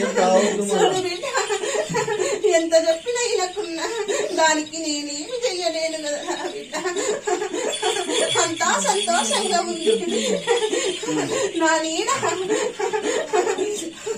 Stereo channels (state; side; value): identical; both; correlation 1.00